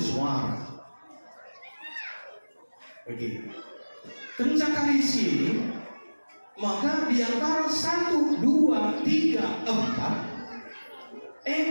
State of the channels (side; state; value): both; inverted; correlation -1.00